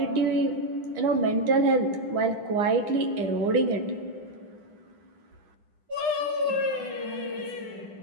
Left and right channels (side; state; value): left; late; 10 ms